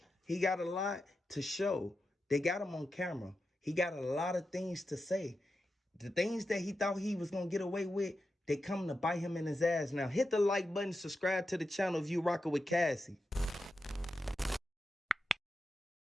He got a lot to show. They got him on camera. He got a lot of things to say. The things that he thought he was going to get away with, they come to bite him in his ass now. Hit the like button, subscribe to the channel if you rocking with Cassie.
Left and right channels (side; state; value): both; normal; correlation 0.89